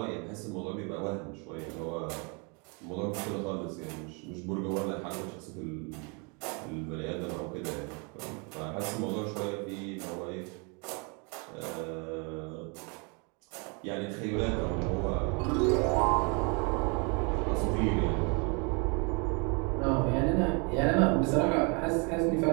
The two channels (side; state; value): left; quieter; 33.2 dB